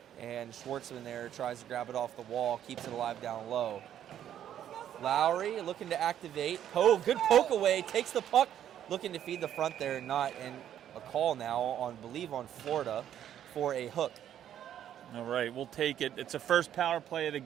And Schwartzman there tries to grab it off the wall, keeps it alive down low. Lowry looking to activate. Oh, good poke away. Takes the puck. Looking to feed the front there. Not. And a call now on Florida for a hook. All right, we'll take it. It's a first power play of the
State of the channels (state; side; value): quieter; left; 10.5 dB